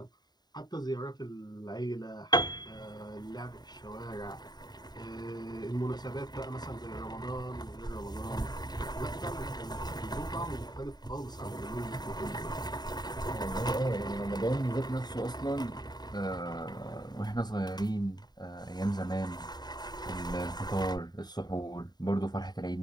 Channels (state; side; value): late; right; 0.20 ms